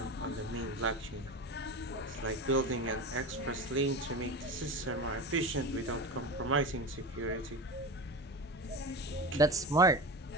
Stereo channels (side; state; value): both; normal; correlation 0.26